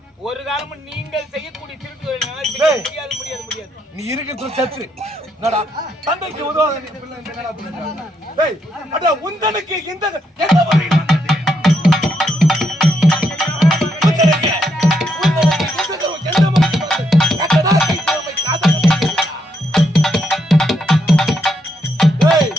ஒரு காலமும் நீங்கள் செய்யக்கூடிய திருட்டு முடியாது. நீ இருக்கிற சத்து என்னடா தந்தைக்கு உதவாத நீ பிள்ளை என்னடா பண்ணுற? டேய் அட உந்தனுக்கு இந்த எந்த வழி வந்தது?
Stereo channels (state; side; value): normal; both; correlation 0.77